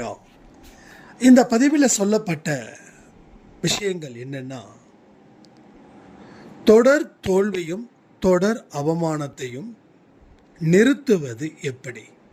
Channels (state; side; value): identical; both; correlation 1.00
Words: இந்த பதிவில் சொல்லப்பட்ட விஷயங்கள் என்னன்னா, தொடர் தோல்வியும் தொடர் அவமானத்தையும் நிறுத்துவது எப்படி,